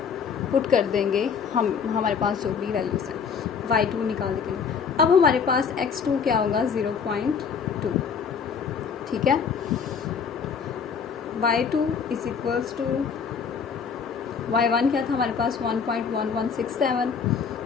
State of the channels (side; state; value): right; quieter; 6.3 dB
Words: पुट कर देंगे हमारे पास जो भी वैल्यूज़ हैं y2 निकालने के लिए। अब हमारे पास x2 क्या होगा 0.2, ठीक है। y2 is equals to y1 क्या था हमारे पास 1.1167,